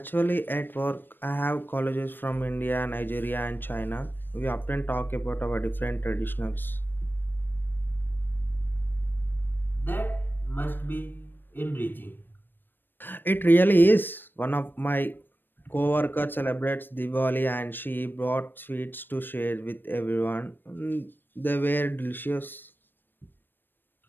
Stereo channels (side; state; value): right; late; 0.095 ms